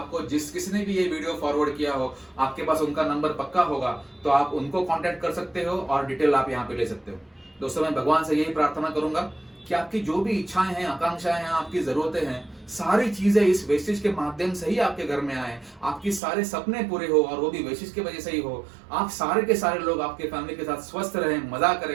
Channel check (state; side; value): drops out; left; at 16.2 s